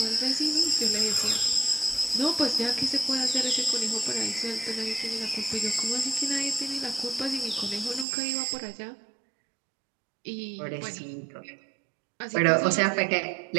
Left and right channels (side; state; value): left; drops out; at 8.1 s